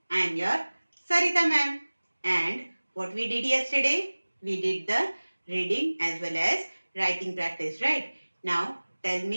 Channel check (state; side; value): inverted; both; correlation -1.00